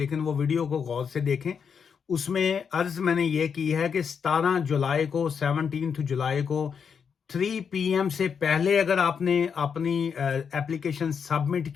वो वीडियो को गौर से देखें। उसमें अर्ज मैंने ये की है कि 17 जुलाई को 17 जुलाई को 3 PM से पहले अगर आपने अपनी एप्लीकेशन सबमिट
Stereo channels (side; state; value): right; quieter; 6.7 dB